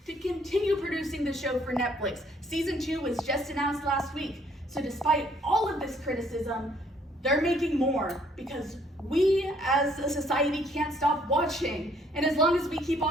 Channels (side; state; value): both; normal; correlation 0.64